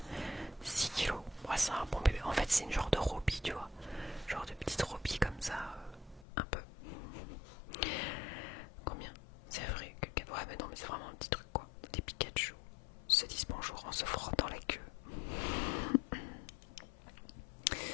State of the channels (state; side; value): drops out; right; at 6.2 s